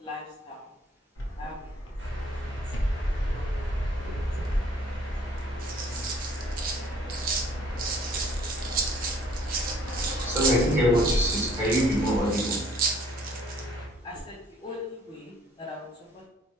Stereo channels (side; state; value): both; normal; correlation 0.59